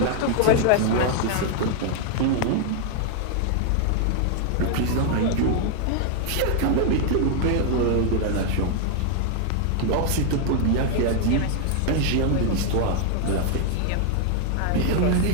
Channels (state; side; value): different; both; correlation 0.00